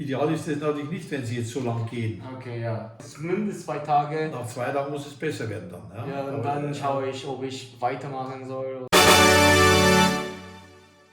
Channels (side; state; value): both; identical; correlation 1.00